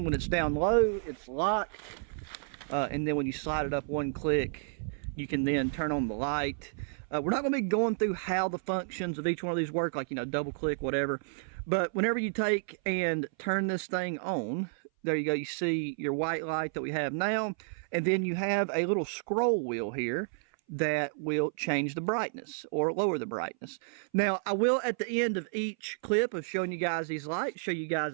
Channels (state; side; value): silent; left; 57 dB below the other